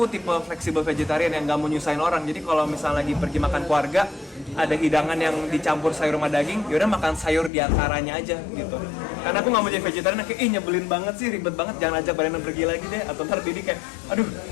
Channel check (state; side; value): drops out; right; at 7.5 s